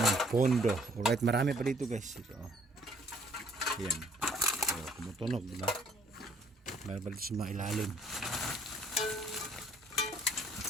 ng pondo. Alright, marami pa dito guys. Ito. Ayan. So, tumutunog, diba? Meron pa dito sa mga ilalim.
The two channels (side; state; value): both; normal; correlation 0.62